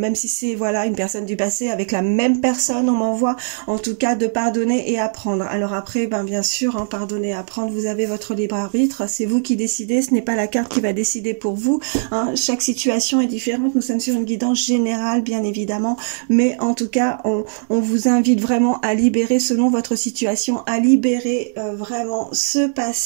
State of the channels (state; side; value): silent; left; digital silence